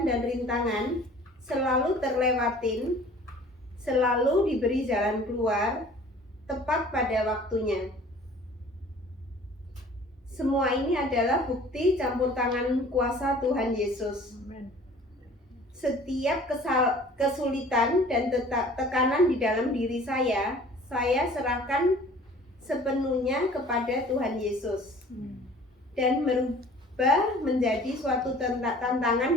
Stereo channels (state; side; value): normal; both; correlation 0.48